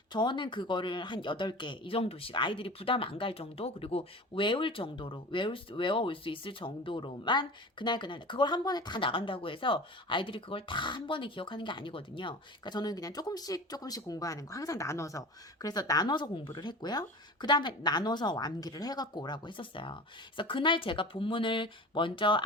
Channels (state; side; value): normal; both; correlation 0.35